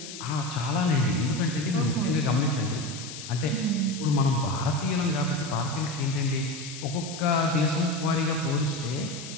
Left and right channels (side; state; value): left; noise; hiss, 11 dB below the sound